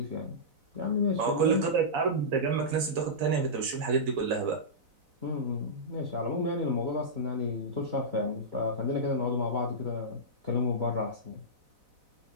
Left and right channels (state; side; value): late; left; 4.0 ms